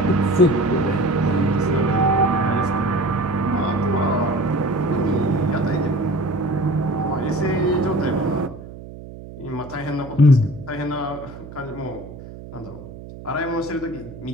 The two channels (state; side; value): noise; right; hum, 14 dB below the sound